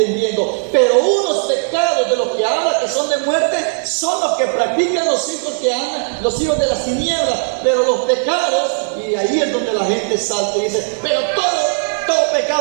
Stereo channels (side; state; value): left; silent; 58 dB below the other